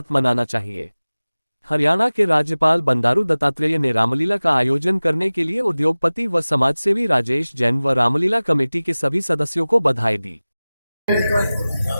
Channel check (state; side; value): inverted; both; correlation -0.98